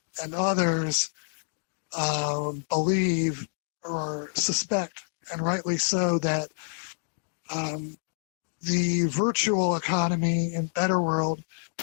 and others believe or suspect, and rightly so, that the virtual economy in Better World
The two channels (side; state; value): right; silent; digital silence